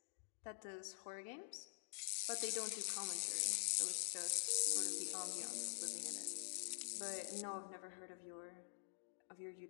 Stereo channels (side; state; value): right; silent; digital silence